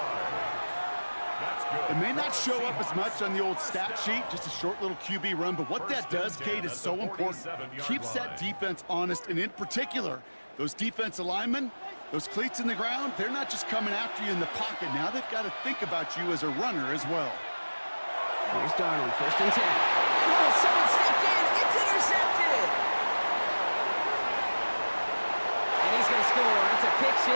That's good. It may not show up as much on the old stat sheet, just a short little QB run, but what that does, Kate, is so important. Keeps that defense honest, and in particular, those defensive linemen, those cleats in the ground, they're not just coming after you in the pocket. Now they've got to think about you as a runner as well. Here's Darnold, 1st and 10. Oh, someone stepped in. It's intercepted. And he's going to score. It's a pick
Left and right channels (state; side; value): inverted; both; correlation -1.00